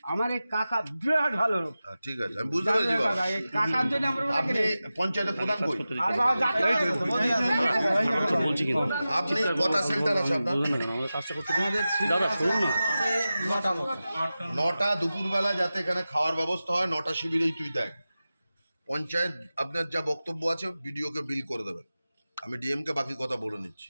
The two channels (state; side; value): inverted; both; correlation -0.95